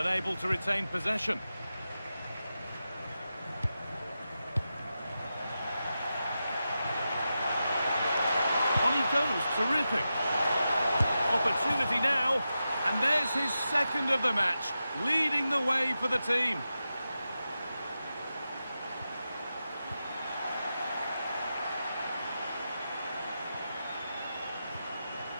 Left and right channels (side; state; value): both; inverted; correlation -0.90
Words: to retain possession. On he goes, terrific. Opportunity now, and there's his second of the match, leading the way for the team.